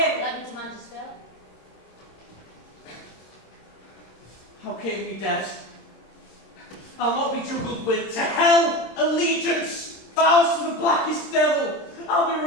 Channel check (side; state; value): right; late; 26 ms